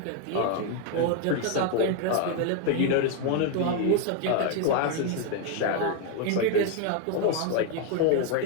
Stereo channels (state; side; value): different; both; correlation 0.01